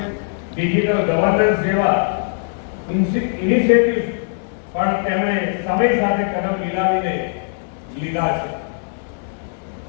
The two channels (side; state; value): right; silent; 66 dB below the other